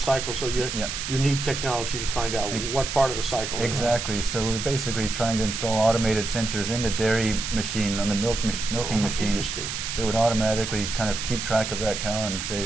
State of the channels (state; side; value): noise; right; hiss, 5 dB below the sound